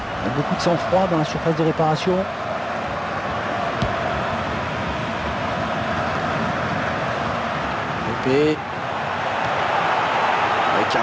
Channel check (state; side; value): identical; both; correlation 1.00